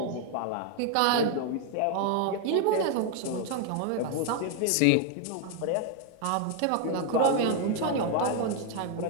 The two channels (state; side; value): different; both; correlation 0.01